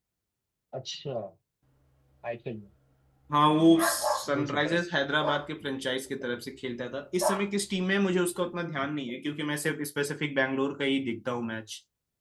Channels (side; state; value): both; identical; correlation 1.00